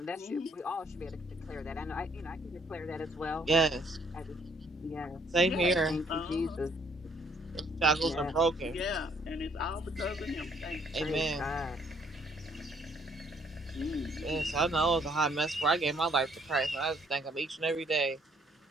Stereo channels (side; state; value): both; normal; correlation 0.65